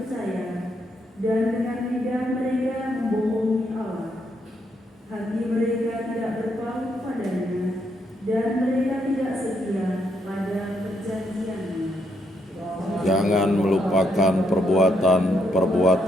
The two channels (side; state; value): both; normal; correlation 0.77